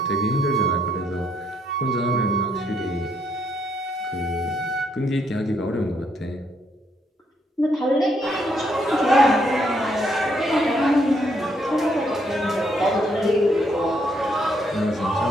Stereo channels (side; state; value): both; normal; correlation 0.73